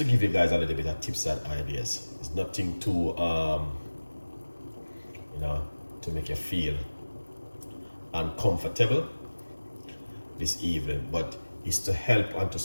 give you guys a little bit of tips and ideas. It's nothing too to make you feel uncomfortable this evening, but it's to help and to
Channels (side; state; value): both; inverted; correlation -1.00